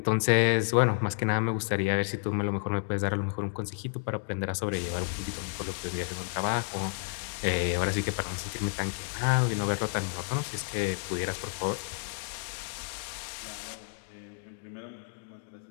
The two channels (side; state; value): right; silent; digital silence